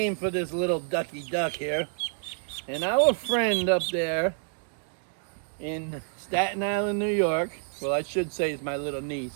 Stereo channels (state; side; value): silent; left; digital silence